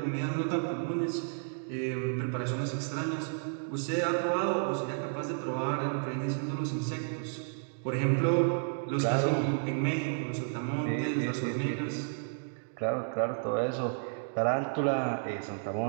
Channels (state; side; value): silent; left; digital silence